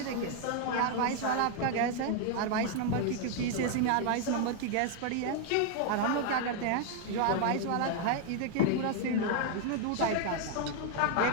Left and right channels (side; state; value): both; different; correlation 0.00